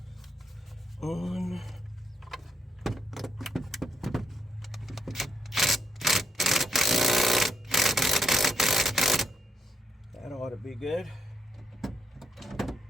On. That ought be good.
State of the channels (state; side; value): normal; both; correlation 0.78